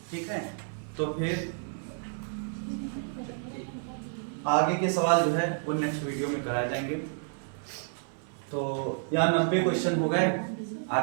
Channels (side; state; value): left; silent; 58 dB below the other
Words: ठीक है। तो फिर आगे के सवाल जो है वो नेक्स्ट वीडियो में कराए जाएंगे। तो यहाँ 90 क्वेश्चन हो गए,